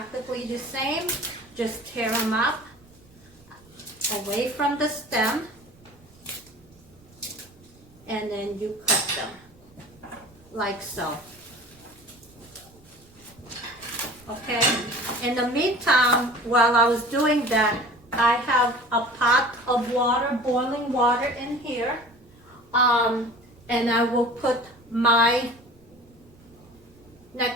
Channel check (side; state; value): right; noise; rumble, 27 dB below the sound